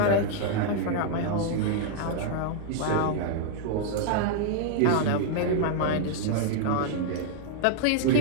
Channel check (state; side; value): different; both; correlation -0.01